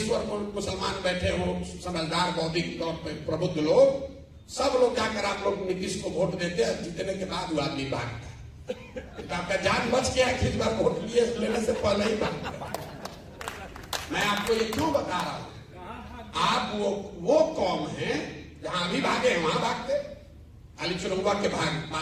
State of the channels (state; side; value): identical; both; correlation 1.00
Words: मुसलमान बैठे हो, समझदार बौद्धिक तौर पर प्रबुद्ध लोग, सब लोग जाकर आप लोग नीतीश को वोट देते हैं। जीतने के बाद वो आदमी भागता। तो आपका जान बच गया कि इस बार वोट लेने से पहले ही भागता। मैं आपको ये क्यों बता रहा हूं? आप वो कौम है जहां अभी भागे हैं वहां भागते, खाली चुनाव के